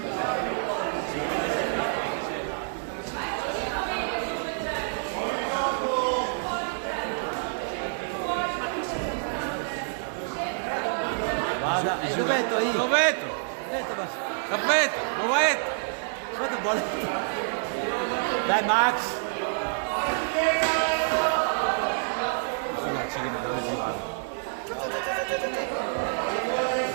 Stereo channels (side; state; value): left; silent; digital silence